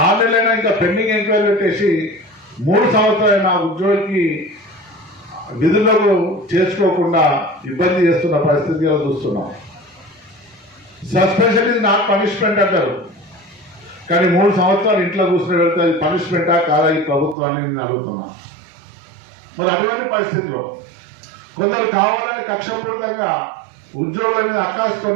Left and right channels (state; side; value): drops out; left; at 17.4 s